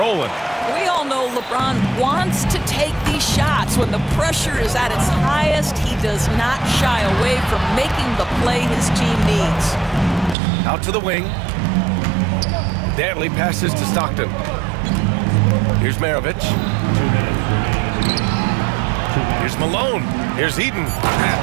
We all know LeBron wants to take these shots. When the pressure is at its highest, he does not shy away from making the play his team needs. Out to the wing. Dantley passes to Stockton. Here's Maravich. Here's Malone. Here's Eden.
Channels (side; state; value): left; drops out; at 10.4 s